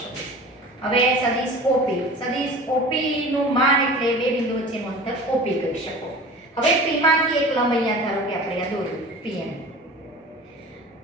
સદિશ. હવે સદિશ OP નું માન એટલે બે બિંદુ વચ્ચેનું અંતર OP કહી શકો. હવે P માંથી એક લંબ અહીંયા ધારો કે આપણે આ દોર્યું PM.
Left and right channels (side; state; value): both; normal; correlation 0.39